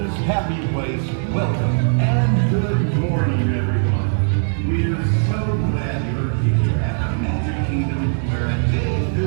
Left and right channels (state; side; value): silent; left; digital silence